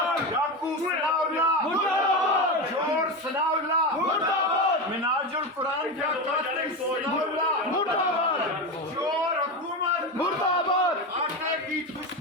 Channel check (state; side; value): normal; both; correlation 0.18